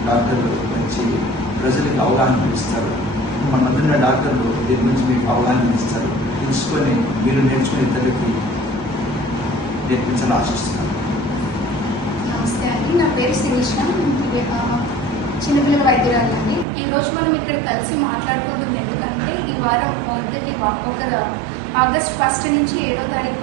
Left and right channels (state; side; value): drops out; left; at 16.7 s